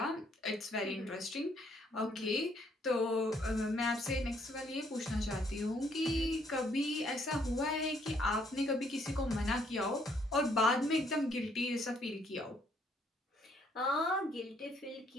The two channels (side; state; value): both; normal; correlation 0.68